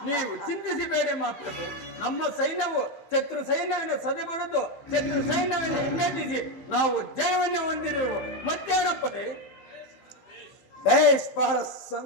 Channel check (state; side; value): late; right; 15 ms